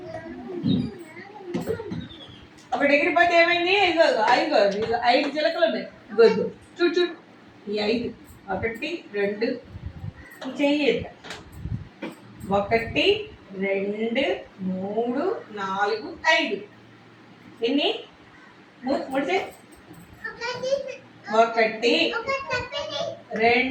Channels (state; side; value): identical; both; correlation 1.00